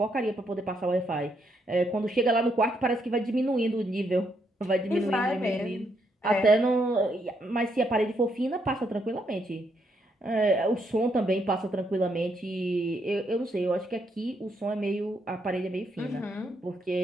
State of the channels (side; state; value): both; normal; correlation 0.76